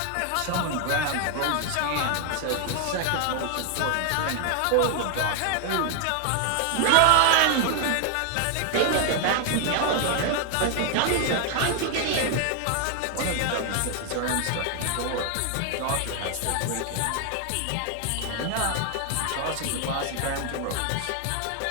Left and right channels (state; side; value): different; both; correlation 0.00